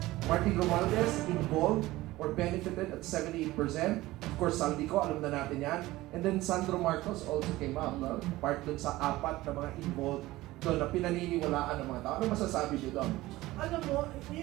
Martin Romualdez, involved or benefited at 78%. Of course, Saldico, alam na natin yan. And then Sandro Marcos also came up, no? Part dun sa apat na mga involved doon na pinaniniwalaan ng mga tao. Ano masasabi niyo doon? Alam mo,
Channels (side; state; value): left; quieter; 17.9 dB